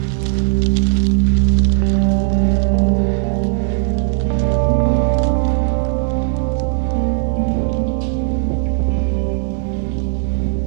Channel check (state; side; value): silent; left; digital silence